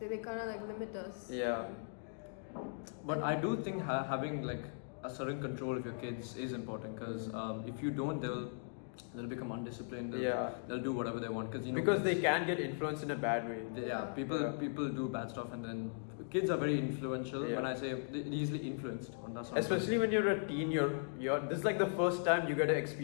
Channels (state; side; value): silent; right; digital silence